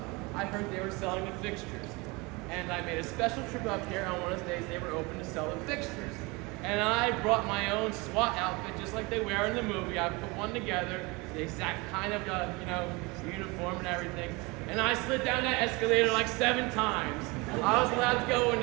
I heard they were selling the fixtures. And I made a special trip up here on one of those days they were open to sell the fixtures. And I brought my own SWAT outfit, just like they wear in the movie. I put one together, the exact kind of, uniform and everything. And I slid down that escalator like 7 times. I was allowed to go in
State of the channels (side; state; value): left; quieter; 25.8 dB